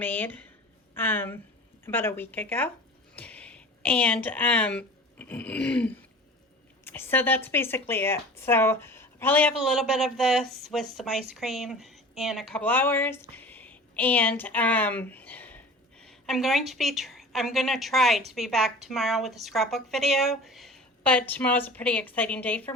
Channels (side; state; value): both; normal; correlation 0.40